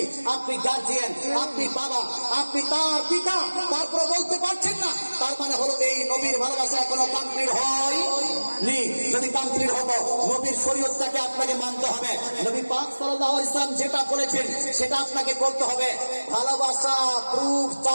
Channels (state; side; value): inverted; both; correlation -1.00